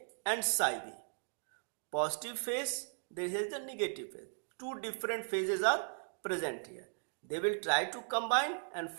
and psi B. Positive phase, there is the negative phase. Two different phases are present here. They will try to combine and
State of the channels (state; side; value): silent; left; digital silence